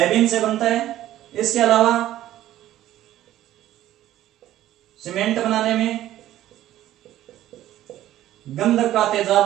से बनता है। इसके अलावा सीमेंट बनाने में, गंधक का तेजाब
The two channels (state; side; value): quieter; left; 13.5 dB